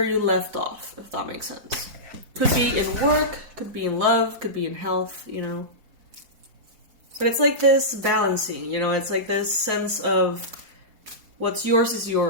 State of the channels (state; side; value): late; left; 4.7 ms